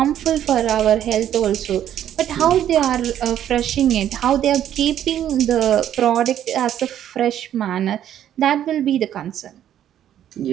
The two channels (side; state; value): left; quieter; 10.8 dB